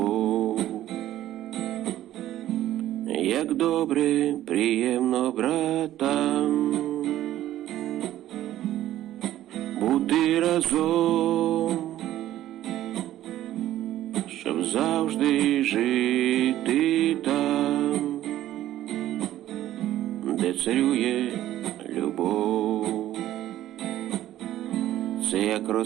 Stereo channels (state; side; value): quieter; left; 13.4 dB